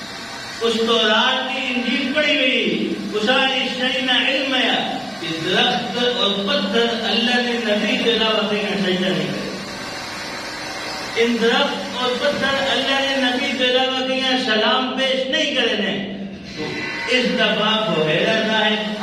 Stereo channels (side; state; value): both; identical; correlation 1.00